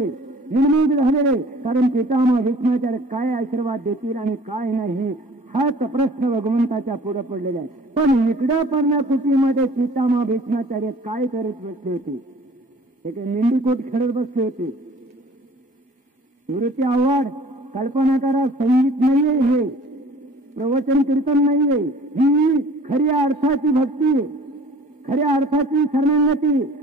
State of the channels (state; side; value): normal; both; correlation 0.49